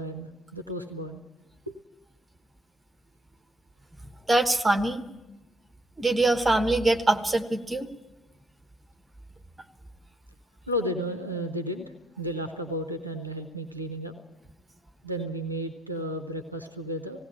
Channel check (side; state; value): both; normal; correlation 0.69